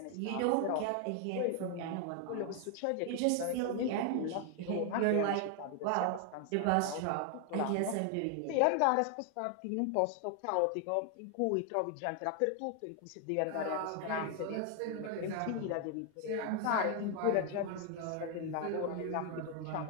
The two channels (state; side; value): different; both; correlation 0.00